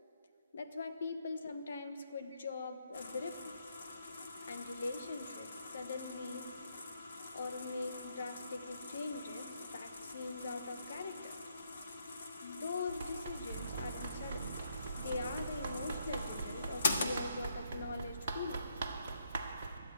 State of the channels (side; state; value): both; inverted; correlation -0.75